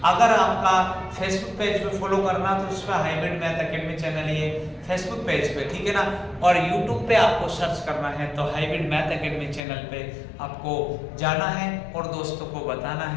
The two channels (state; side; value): drops out; right; at 9.6 s